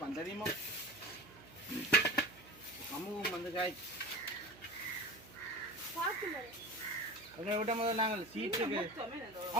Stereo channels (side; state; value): right; noise; hum, 21 dB below the sound